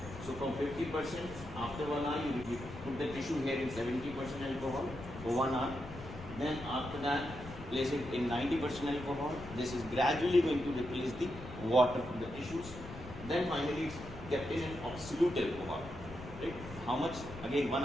So from 50%, after 1 hour you put the tissue here in 70% alcohol for 1 hour. Then after that, place it in 90% alcohol. This is gradually going to replace the water from the tissues. Then finally it's kept in an absolute alcohol. Right? How much? Again 1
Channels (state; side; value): noise; left; rumble, 13 dB below the sound